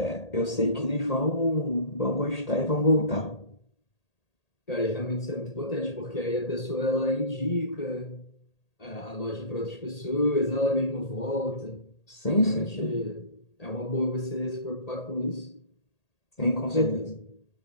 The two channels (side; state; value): right; late; 1.8 ms